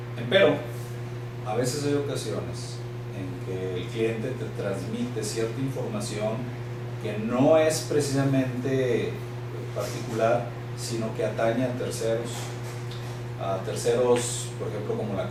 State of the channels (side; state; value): both; identical; correlation 1.00